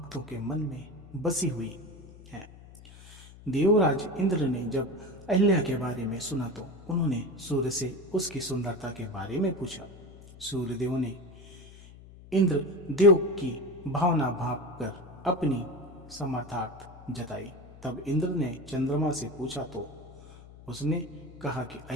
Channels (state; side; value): noise; left; hum, 19 dB below the sound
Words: के मन में बसी हुई है। देवराज इंद्र ने जब अहिल्या के बारे में सुना तो उन्होंने सूर्य से उसकी सुंदरता के बारे में पूछा। सूर्यदेव ने इंद्र देव की भावना भाप कर अपनी समर्थार्थ जताई। तब इंद्र ने चंद्रमा से पूछा तो उसने कहा कि